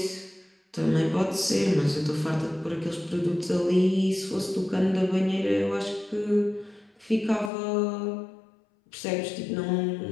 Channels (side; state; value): right; drops out; at 7.5 s